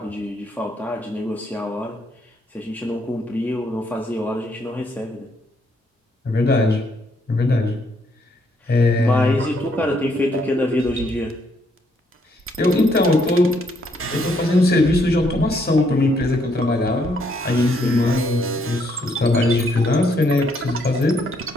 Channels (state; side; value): normal; both; correlation 0.72